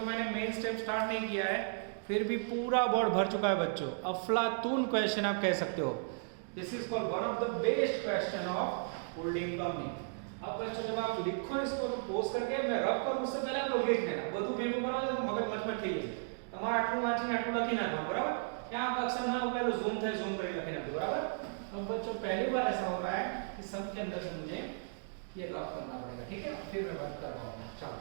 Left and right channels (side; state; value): left; silent; digital silence